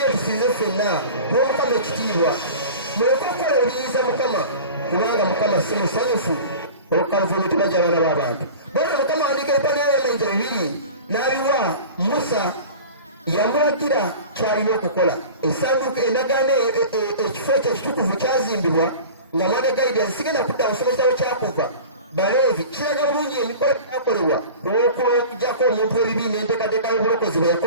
tusinze ffenna tuwa Mukama ekitiibwa, muleke okukola ebiyiza Mukama kubanga Mukama si musanyufu olw'okukaluvumu tebajja abaana b'abantu. Bwatyo Mukama awandiika ebipande by'amayinja 2 n'abiwa Musa, yamulagira kyalina okukola. Essanduuko endagaano ekifo ekyo ekitukuvu kyazimbibwa nga mwana Gaidi sigenda kudda musomesa we Kyakuva Baleevi. Kiraga bulungi emikolo gyakolebwa olw'okujjako omuntu w'ebibi n'enteekateeka y'obulokozi bwe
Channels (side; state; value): both; inverted; correlation -0.37